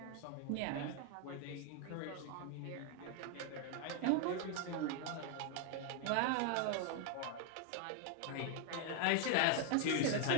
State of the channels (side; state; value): both; different; correlation 0.01